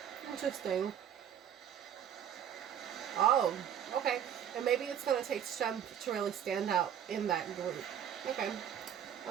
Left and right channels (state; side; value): quieter; left; 9.4 dB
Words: Interesting. Oh, okay. And maybe it's going to take strength to really stand out in that group. Okay.